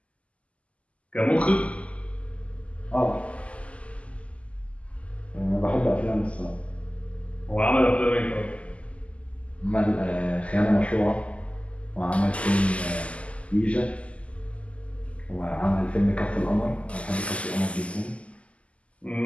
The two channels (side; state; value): right; late; 0.062 ms